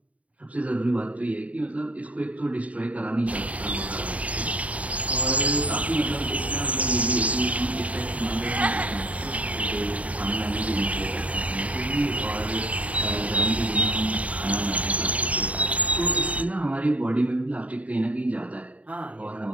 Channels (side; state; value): left; late; 0.068 ms